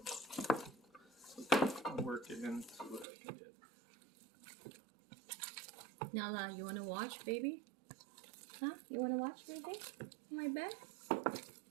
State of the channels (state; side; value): drops out; left; at 3.1 s